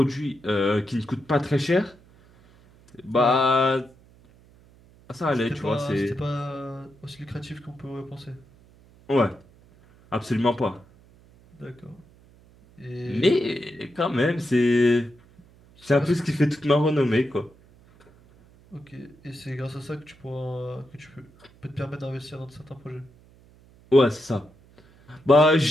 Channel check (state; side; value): noise; right; hum, 27 dB below the sound